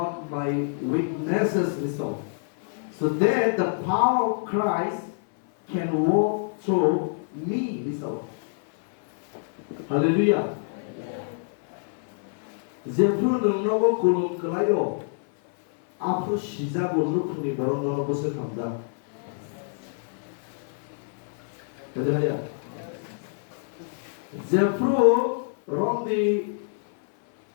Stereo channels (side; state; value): right; silent; 56 dB below the other